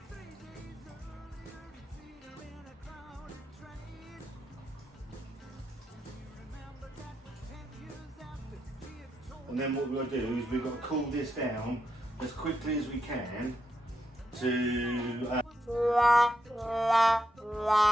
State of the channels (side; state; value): both; normal; correlation 0.83